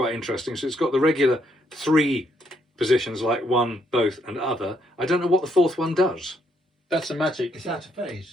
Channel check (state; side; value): normal; both; correlation 0.74